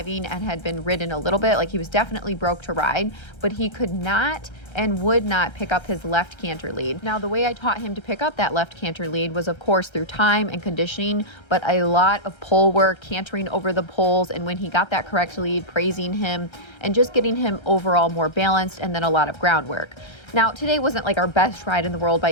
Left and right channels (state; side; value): late; right; 1.3 ms